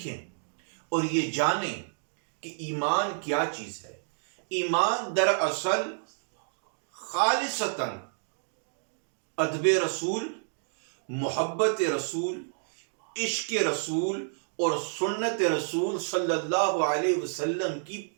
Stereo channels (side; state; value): left; silent; digital silence